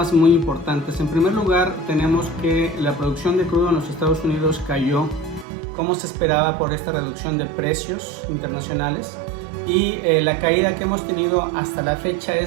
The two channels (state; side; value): drops out; left; at 5.5 s